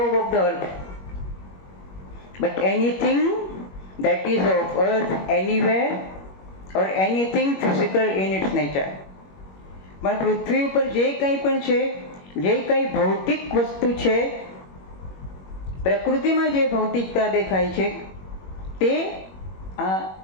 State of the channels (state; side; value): late; right; 21 ms